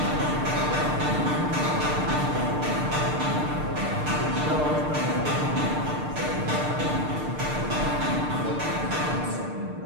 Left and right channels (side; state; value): left; late; 6.6 ms